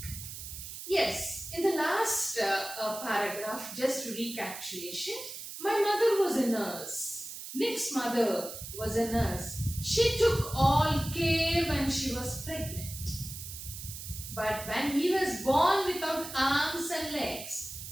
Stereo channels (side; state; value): right; noise; hiss, 10 dB below the sound